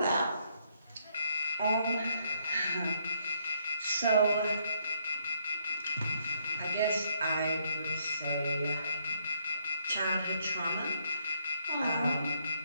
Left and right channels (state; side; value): inverted; both; correlation -0.72